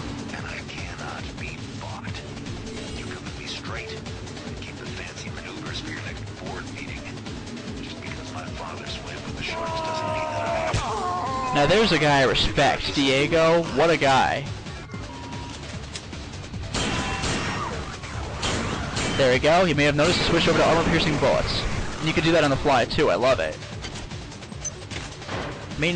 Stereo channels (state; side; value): identical; both; correlation 1.00